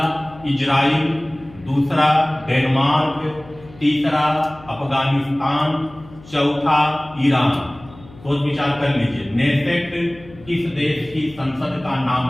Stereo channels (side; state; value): left; noise; hum, 22 dB below the sound